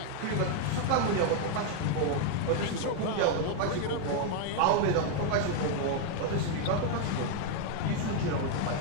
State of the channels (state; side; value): different; both; correlation 0.00